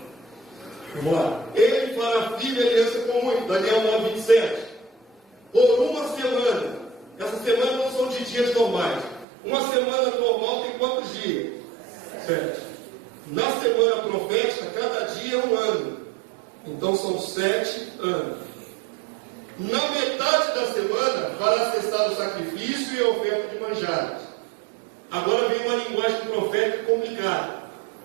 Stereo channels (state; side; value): drops out; left; at 9.2 s